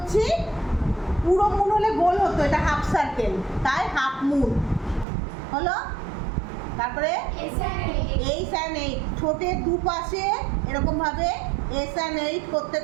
পুরো মুন হলে গোল হতো, এটা হাফ সার্কেল, তাই হাফ মুন হলো। তারপরে এইচ অ্যান্ড এইট, ঠোঁটের দুপাশে এরকমভাবে এস অ্যান্ড এইট করতে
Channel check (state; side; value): drops out; left; at 5.1 s